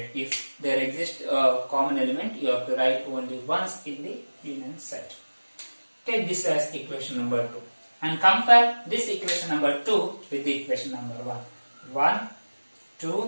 If there exists a common element, you have to write only once in the union set. Take this as equation number 2 and compare this equation number 2 with the equation number 1. 1,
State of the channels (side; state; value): both; inverted; correlation -1.00